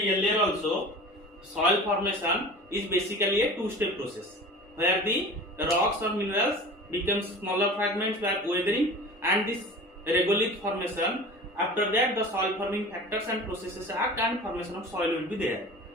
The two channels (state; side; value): normal; both; correlation 0.38